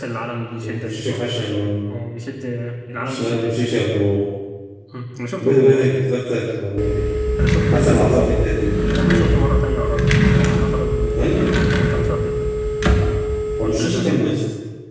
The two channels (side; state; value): both; identical; correlation 1.00